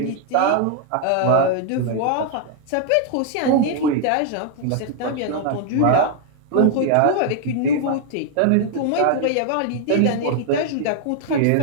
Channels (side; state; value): both; different; correlation 0.00